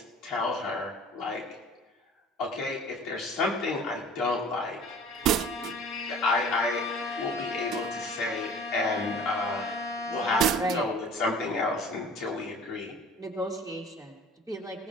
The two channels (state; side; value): normal; both; correlation 0.45